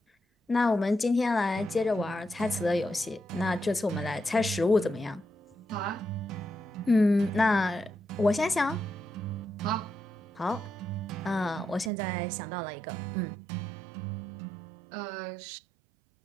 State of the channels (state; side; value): drops out; left; at 11.9 s